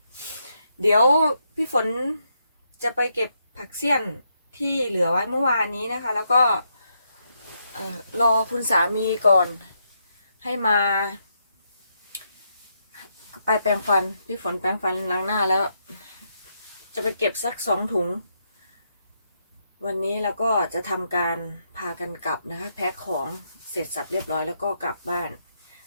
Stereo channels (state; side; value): inverted; both; correlation -0.79